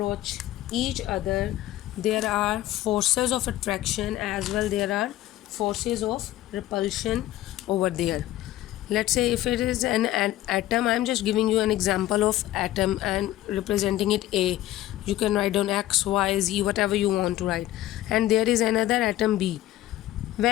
each other, there are forces of attraction as well there are forces of repulsion over there. Let's say if it is an atom, I'm just giving you an example of atom and representing it A. You can write down X, Y, Z, whatever you want to write. And there is another atom B.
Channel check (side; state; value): right; quieter; 14.6 dB